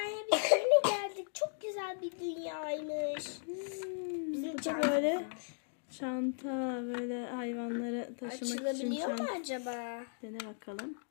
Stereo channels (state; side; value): silent; right; digital silence